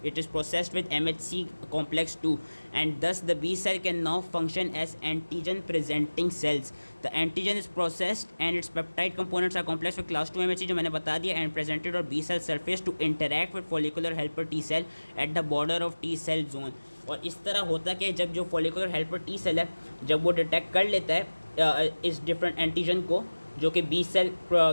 It is processed with MHC complex 2, and thus the B cell can now function as antigen presenting cells. The antigen is processed and its peptide components are complex with class 2 MHC जो मैंने बता दिया, and presented on B cell surface to interact with follicular helper T cell at the border of T cell zone. और इस तरह होता कि जब जो follicular helper T cell है, जब वो डिटेक्ट कर लेता है इस डिफरेंट एंटीजन को जो कि बी सेल क्या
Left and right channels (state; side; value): inverted; both; correlation -1.00